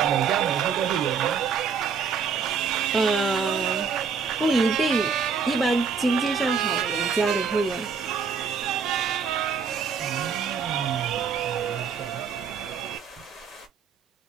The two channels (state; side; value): quieter; left; 5.8 dB